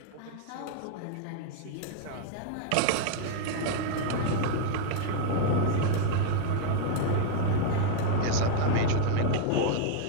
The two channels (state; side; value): different; both; correlation 0.00